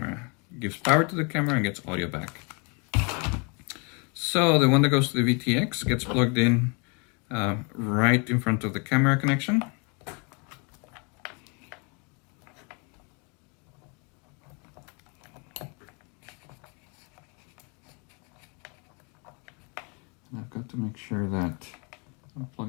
Gives power to the camera and gets audio back. So the one that goes to the VTX gets plugged in right in front of the camera connection. And I've got to make sure that I'm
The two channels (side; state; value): right; quieter; 33.4 dB